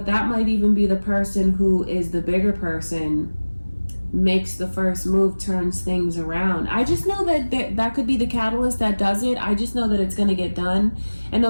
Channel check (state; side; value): inverted; both; correlation -1.00